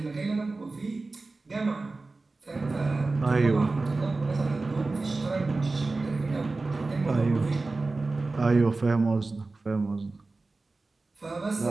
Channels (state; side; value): quieter; left; 3.5 dB